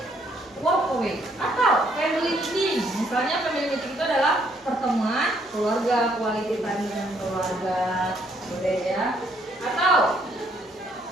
walk away atau family meeting. Misalnya family meeting itu adalah pertemuan keluarga, quality time dengan keluarga, boleh ya. Atau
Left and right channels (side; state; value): both; normal; correlation 0.68